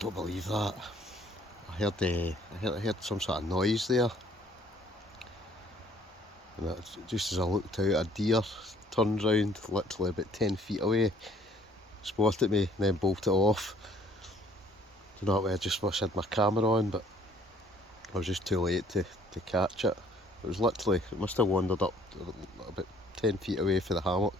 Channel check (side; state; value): both; normal; correlation 0.59